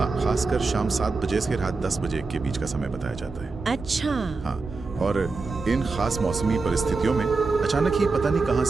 खासकर शाम 7 बजे से रात 10 बजे के बीच का समय बताया जाता है। अच्छा। हाँ, और इन खास मौसमी परिस्थितियों में अचानक ही पता नहीं कहां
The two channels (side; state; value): left; quieter; 4.0 dB